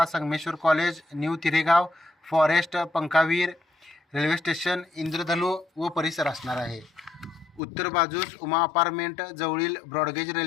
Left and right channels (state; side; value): drops out; right; at 7.6 s